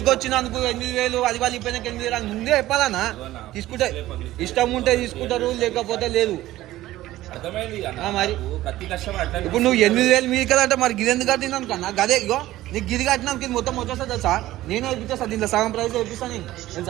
వచ్చినందుకు 8,000 అది వాళ్ళు ఇపోయినాక 8,000 ముందే చెప్పాలన్నా. తీసుకుంటే ఇష్టం ఉంటే తీసుకుంటారు, లేకపోతే లేదు. మరి ఇప్పుడు నువ్వు 8,000 మీది కదా అంటే మరి గిది ఎందుకు కట్టినాను కన్నా? గదే ఇగో నీకు గిది కట్టినాను ఇది మొత్తం వచ్చేస్తా తెలుసా? నేను వేపిస్తా, దీంట్లో సగం ప్రైస్ వేపిస్తాను నేను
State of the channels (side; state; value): left; quieter; 15.6 dB